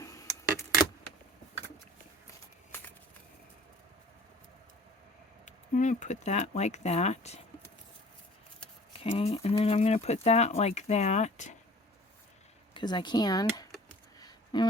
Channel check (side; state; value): both; normal; correlation 0.48